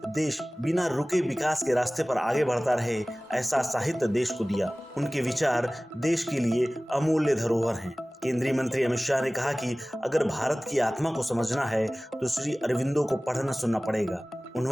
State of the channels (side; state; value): both; normal; correlation 0.98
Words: देश बिना रुके विकास के रास्ते पर आगे बढ़ता रहे, ऐसा साहित्य देश को दिया। उनके विचार देश के लिए अमूल्य धरोहर हैं। केंद्रीय मंत्री अमित शाह ने कहा कि अगर भारत की आत्मा को समझना है तो श्री अरविंदो को पढ़ना सुनना पड़ेगा।